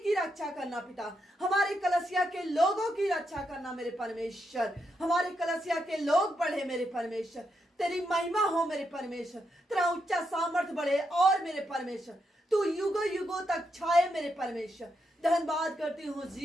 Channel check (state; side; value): normal; both; correlation 0.82